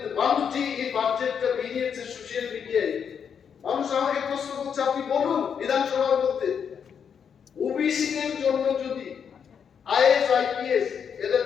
মানুষ যে এই বাজেটটা বেরিয়েছে সোশ্যাল মিডিয়ায়, মানুষ আমাকে প্রশ্ন করছে, আপনি বলুন বিধানসভার মধ্যে ওবিসি দের জন্য যদি আইএস আইপিএস এদের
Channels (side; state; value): right; quieter; 7.3 dB